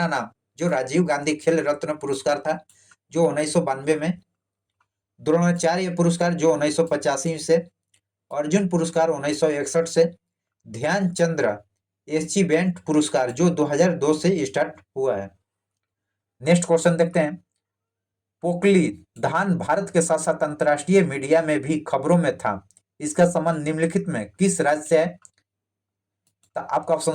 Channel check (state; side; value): identical; both; correlation 1.00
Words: नाम जो राजीव गांधी खेल रत्न पुरस्कार था जो 1992 में। द्रोणाचार्य पुरस्कार जो 1985 से, अर्जुन पुरस्कार 1961 से, ध्यानचंद्र अचीवमेंट पुरस्कार जो 2002 से स्टार्ट हुआ है। नेक्स्ट क्वेश्चन देखते हैं। पोकली धान भारत के साथ साथ अंतर्राष्ट्रीय मीडिया में भी खबरों में था। इसका संबंध निम्नलिखित में किस राज्य से है? तो आपका